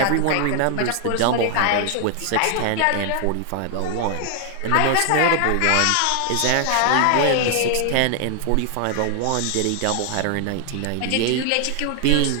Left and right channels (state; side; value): different; both; correlation 0.00